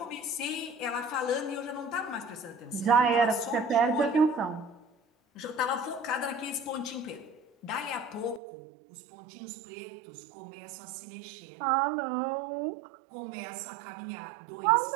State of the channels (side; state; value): left; drops out; at 8.4 s